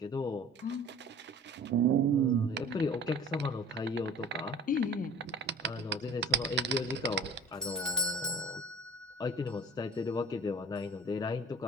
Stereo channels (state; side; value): normal; both; correlation 0.43